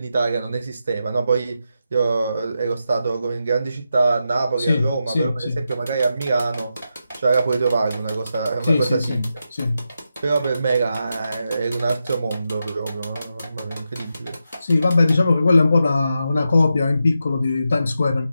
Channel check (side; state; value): both; inverted; correlation -0.87